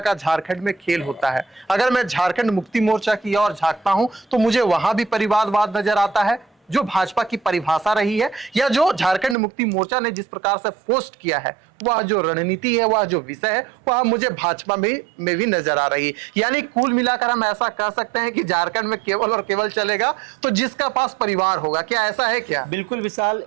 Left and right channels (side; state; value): left; drops out; at 9.3 s